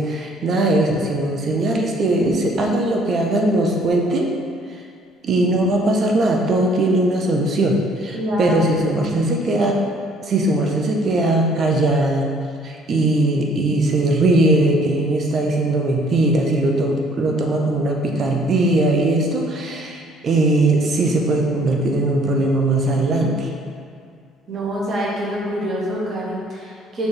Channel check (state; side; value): normal; both; correlation 0.60